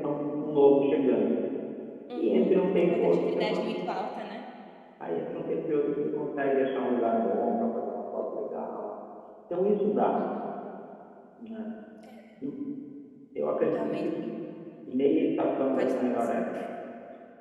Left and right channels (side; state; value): both; identical; correlation 1.00